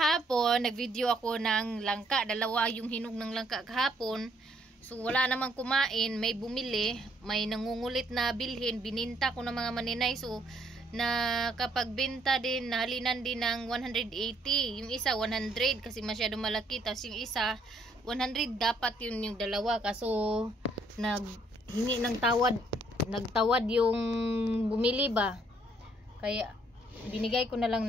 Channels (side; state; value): both; normal; correlation 0.68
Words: nagvideo ako ng langka, dalawa yung hinog ng langka kahapon. So wala namang kumain, may bumili, may nangungulit na bilhin, bininta ko ng mga maninay. So nakapagbenta din, nahalinan din ng 180. Yung isa 100 kasi masyado malaki, tapos yung isa 100 dapat yun yung dalawa. Kaso naghingi ng nagtawad yung bumili ba, kaya binigay ko na lang